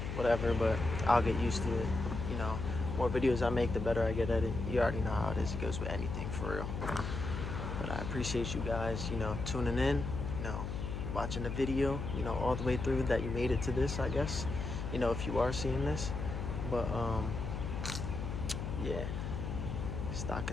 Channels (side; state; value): left; noise; hum, 4 dB below the sound